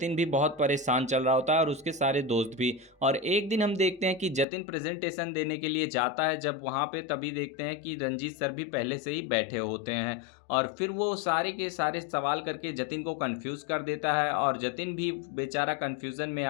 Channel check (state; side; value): drops out; right; at 4.5 s